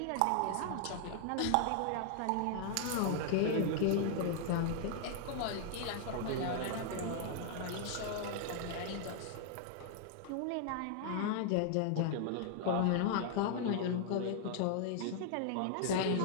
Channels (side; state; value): both; different; correlation 0.00